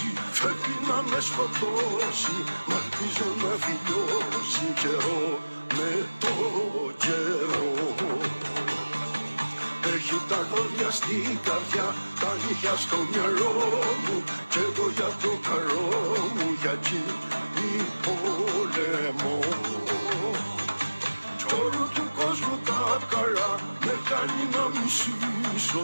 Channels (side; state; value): both; inverted; correlation -1.00